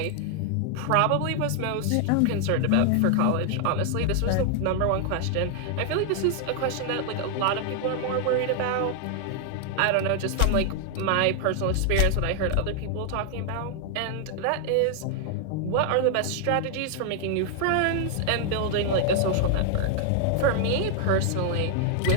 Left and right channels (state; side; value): different; both; correlation 0.00